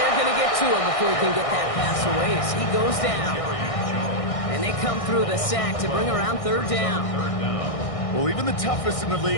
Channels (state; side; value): late; right; 1.6 ms